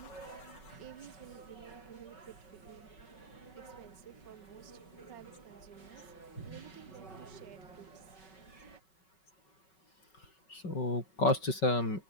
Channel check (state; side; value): late; right; 5.3 ms